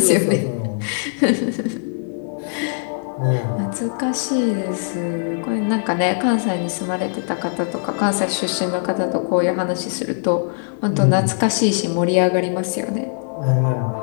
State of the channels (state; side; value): silent; right; digital silence